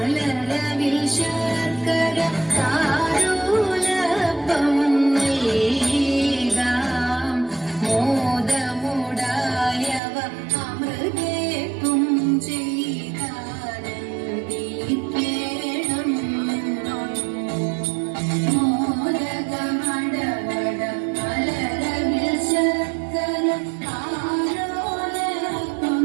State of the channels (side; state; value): left; drops out; at 10.0 s